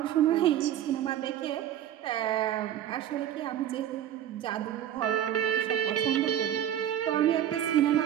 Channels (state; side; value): quieter; left; 11.0 dB